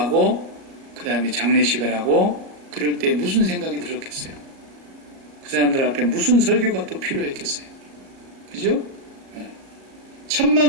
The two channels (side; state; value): left; late; 37 ms